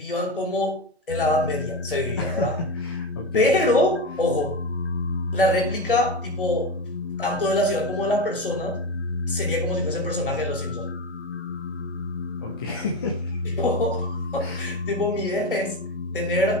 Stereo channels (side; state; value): both; normal; correlation 0.18